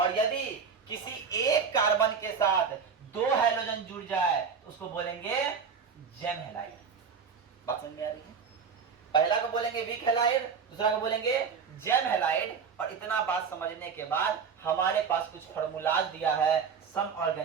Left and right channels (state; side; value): quieter; left; 6.0 dB